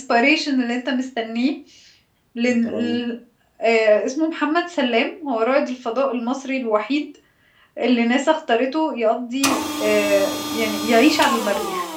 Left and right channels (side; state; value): both; identical; correlation 1.00